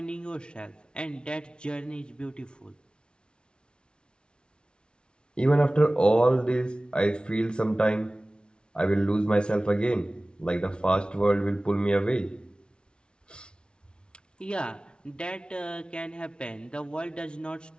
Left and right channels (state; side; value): late; right; 0.056 ms